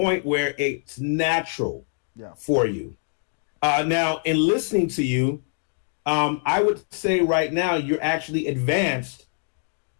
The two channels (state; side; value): silent; right; digital silence